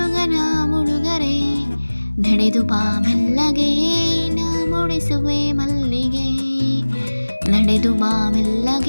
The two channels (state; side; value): inverted; both; correlation -1.00